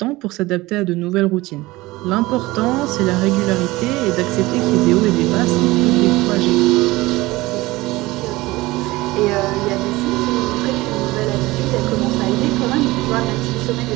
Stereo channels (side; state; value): left; quieter; 20.0 dB